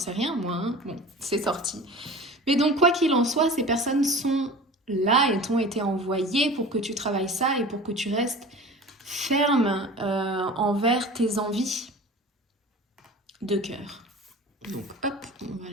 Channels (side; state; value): both; normal; correlation 0.39